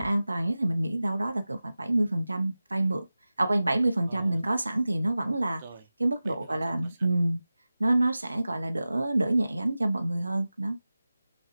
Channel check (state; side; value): inverted; both; correlation -0.96